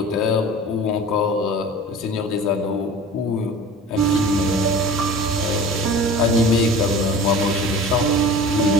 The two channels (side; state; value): both; normal; correlation 0.39